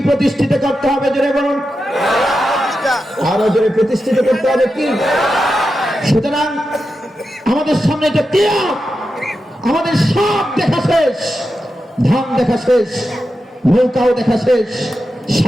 প্রতিষ্ঠিত করতে হবে জোরে বলুন? আরো জোরে প্রতিষ্ঠিত করতে হবে কি? সুতরাং আমাদের সামনে এটা কিয়ামত, আমাদের সব দেখা শেষ, ধান দেখা শেষ, নৌকাও দেখা শেষ,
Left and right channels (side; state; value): both; normal; correlation 0.89